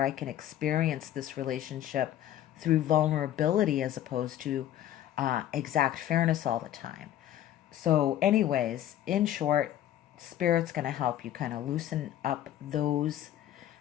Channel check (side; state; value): right; quieter; 12.1 dB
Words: I can experience this relationship through vulnerability as opposed to exact fairness all the time. So anyways, in short, Spirit's going to help you kind of loosen up those